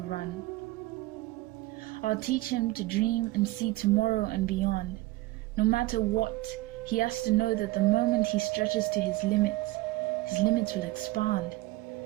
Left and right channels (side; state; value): left; quieter; 18.8 dB